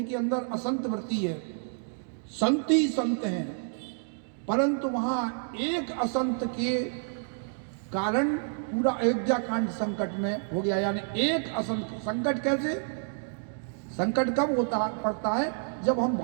अंदर असंत वृत्ति है, संत ही संत हैं। परंतु वहां एक असंत के कारण पूरा अयोध्या कांड संकट में हो गया। यानी एक असंत संकट कैसे, संकट कब होता पड़ता है जब हम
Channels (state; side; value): silent; left; digital silence